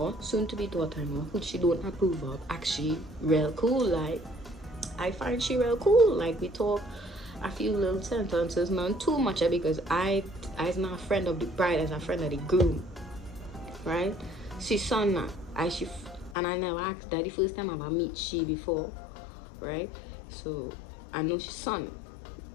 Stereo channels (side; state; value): right; drops out; at 16.4 s